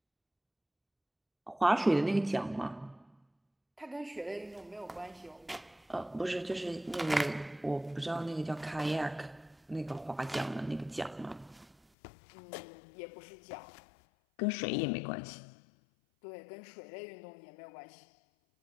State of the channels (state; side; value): drops out; right; at 11.8 s